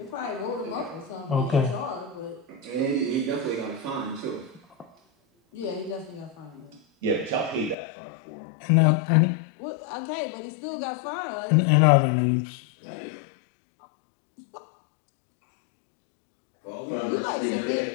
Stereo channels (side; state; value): right; drops out; at 7.8 s